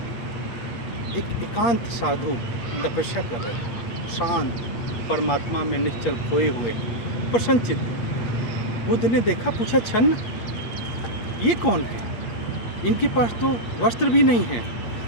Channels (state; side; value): late; right; 8.4 ms